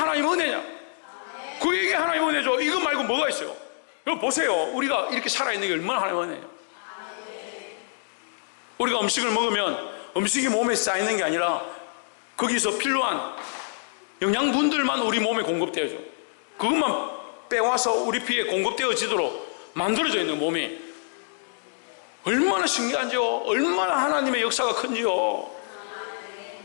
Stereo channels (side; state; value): right; silent; digital silence